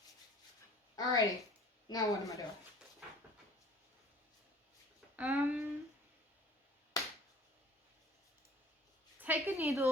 Alrighty. Now what am I doing? Take a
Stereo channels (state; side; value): normal; both; correlation 0.49